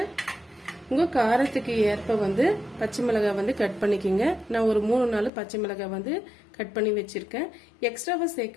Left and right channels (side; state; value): right; drops out; at 5.3 s